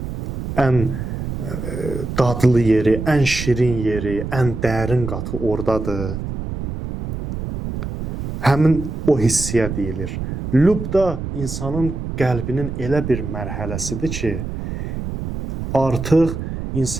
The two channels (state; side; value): noise; right; rumble, 6 dB below the sound